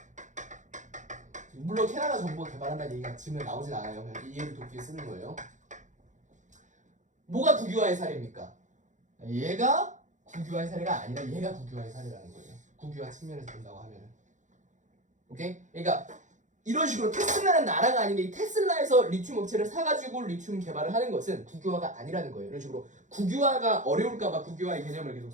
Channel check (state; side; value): late; left; 0.36 ms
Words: 물론 캐나다 정부가 개발한다는 얘기가 지금 나오진 않아요. 그냥 이해를 돕기 위해 쓰는 거예요. 뭐가 국유화의 사례입니까? 얘가 국유화의 사례가 아니라 얘가 국유화의 사례라는 거예요. 국유화 측면에서 본다고 하면은. 오케이? 그러니까 이런 식으로 테슬라는 나라가 아닌데 이 테슬라에서 리튬 업체를 사가지고 리튬 개발을 하는 것은 국유화가 아니라는 거예요. 이런 식으로 국유화가 어려울까봐 국유화의 개념을 계속